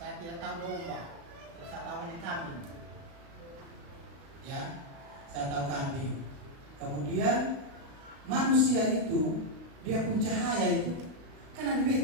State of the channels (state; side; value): late; left; 35 ms